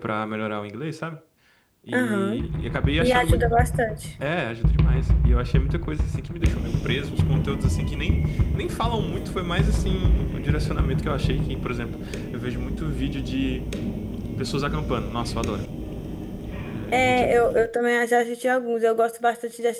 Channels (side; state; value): both; identical; correlation 1.00